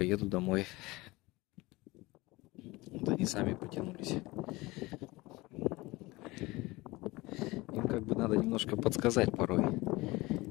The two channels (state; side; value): quieter; right; 21.5 dB